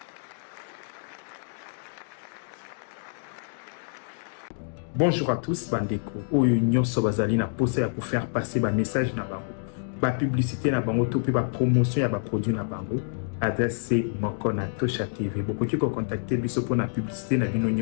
Bonjour à tous, bandeko. Oyo nyonso bazali na posa ya pour faire passer ba message na bango. Ba publicité na bango to pe ba promotion ya ba produit na bango. Adresse c'est moko na Tosha TV. Bokoki ko contacter biso pour na publicité na bino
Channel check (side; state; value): right; silent; digital silence